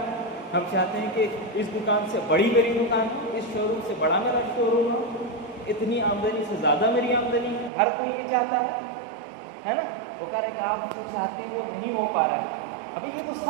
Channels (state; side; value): drops out; left; at 7.7 s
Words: ہم چاہتے ہیں کہ اس دکان سے بڑی میری دکان ہو، اس شو روم سے بڑا میرا شو روم ہو، اتنی آمدنی سے زیادہ میری آمدنی ہے، ہر کوئی یہ چاہتا ہے نا۔ وہ کہہ رہے کہ آپ جو چاہتے ہیں وہ نہیں ہو پا رہا ہے۔ ابھی یہ تو